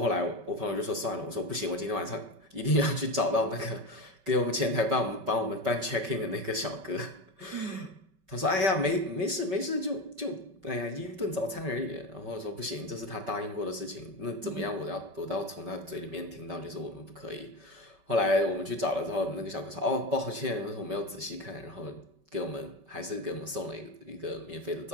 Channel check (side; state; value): left; late; 5.2 ms